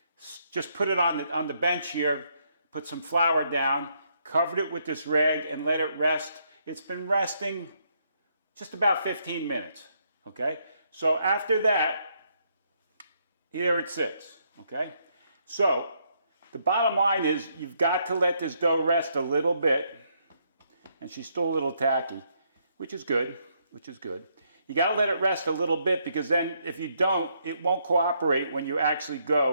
Just put it on the bench here, put some flour down, covered it with this rag and let it rest. It's been resting just about 15 minutes, okay? So after that, here it sits, okay? So the bottom line is you've got to let this dough rest a little bit, and she's still a little tacky, which is good. You got to let it rest a little bit because then if you don't, it won't cooperate when you actually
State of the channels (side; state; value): both; inverted; correlation -0.74